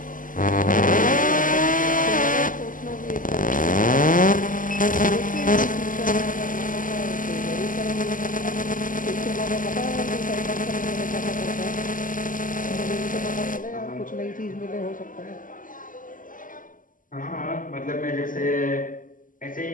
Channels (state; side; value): late; right; 0.39 ms